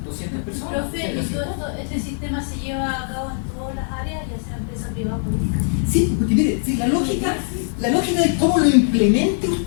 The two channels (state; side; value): silent; right; 65 dB below the other